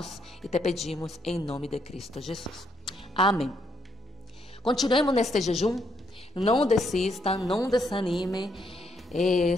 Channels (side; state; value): both; normal; correlation 0.75